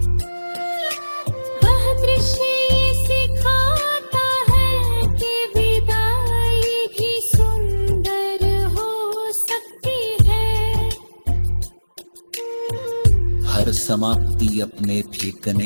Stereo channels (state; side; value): inverted; both; correlation -1.00